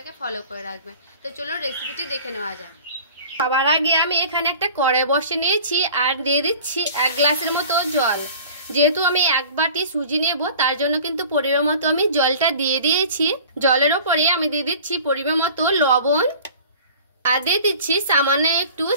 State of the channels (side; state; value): both; inverted; correlation -0.44